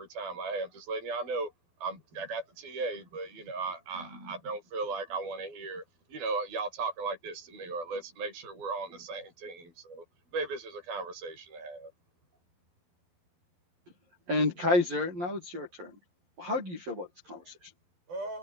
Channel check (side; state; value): left; late; 12 ms